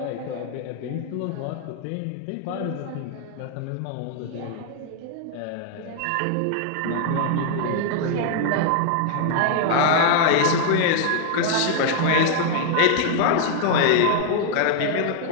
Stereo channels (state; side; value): different; both; correlation 0.00